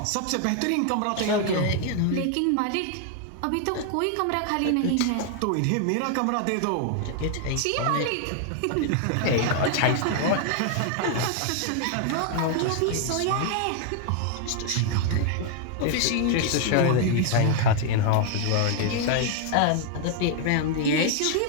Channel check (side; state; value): both; different; correlation 0.00